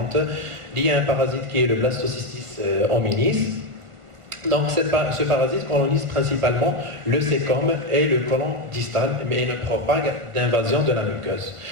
liée à un parasite qui est le Blastocystis hominis. Donc ce parasite colonise principalement le cécome et le côlon distal, mais il ne propague d'invasion de la muqueuse.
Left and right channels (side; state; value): left; late; 1.4 ms